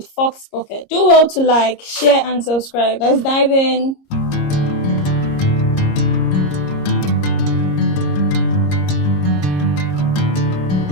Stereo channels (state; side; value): late; right; 30 ms